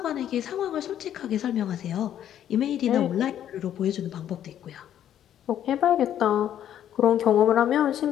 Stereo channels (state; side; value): quieter; right; 10.6 dB